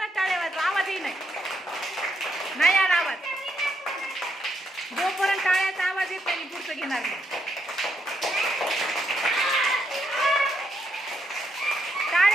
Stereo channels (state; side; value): normal; both; correlation 0.78